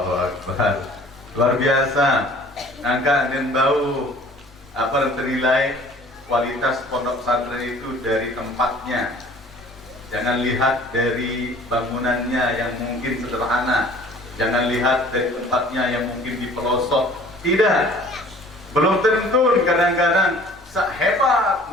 Akbar. Luar biasa. Angka dan bau apa yang ternilai kualitas pondok pesantren itu dari tempatnya. Jangan lihat dari bangunannya yang mungkin sederhana. Jangan lihat dari tempatnya yang mungkin di pelosok. Tidak. Belum tentu kadang-kadang sehebat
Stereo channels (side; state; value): both; normal; correlation 0.50